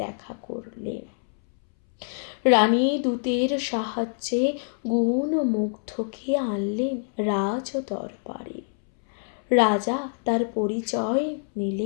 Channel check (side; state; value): right; silent; 61 dB below the other